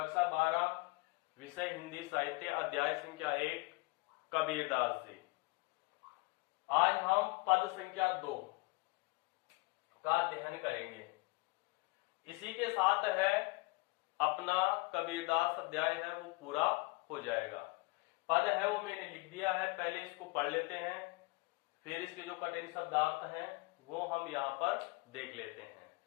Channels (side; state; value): right; quieter; 25.7 dB